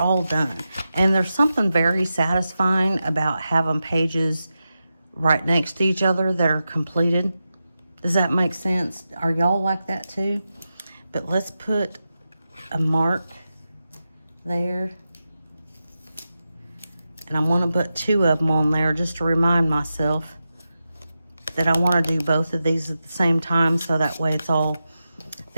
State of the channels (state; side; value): inverted; both; correlation -0.90